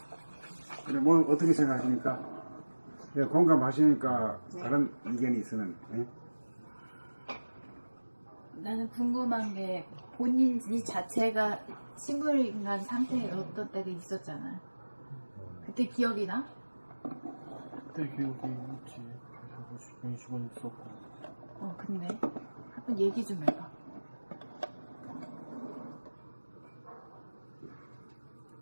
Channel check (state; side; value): inverted; both; correlation -1.00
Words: 그래, 뭐, 어떻게 생각하십니까? 예, 공감하시니까 다른 의견이 있으면, 예? 나는 궁금한 게 본인 이 자체가 식물인간 상태에 어떤 때가 있었잖아. 그때 기억이 나? 그때 기억이 있지. 그래서 20원 있었고. 근데 한번 얘기 좀 해봐.